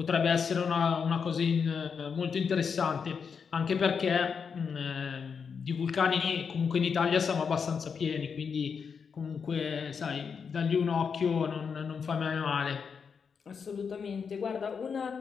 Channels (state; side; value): quieter; right; 6.1 dB